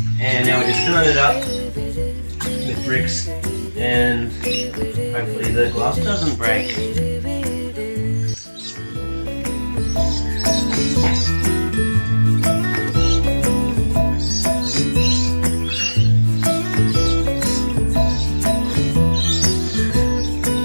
and now we're just filling it up with bricks, and hopefully the glass doesn't break.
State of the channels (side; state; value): both; inverted; correlation -1.00